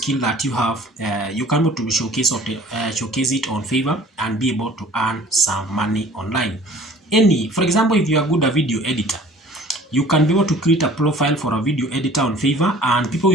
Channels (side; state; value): both; normal; correlation 0.49